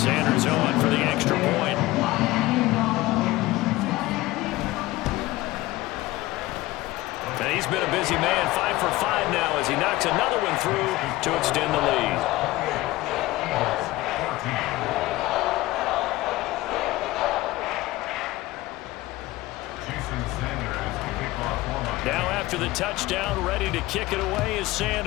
on for the extra point. And he's been a busy man, 5 for 5 now as he knocks another one through to extend the lead. Now after the touchdown, ready to kick it away is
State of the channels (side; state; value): right; quieter; 18.5 dB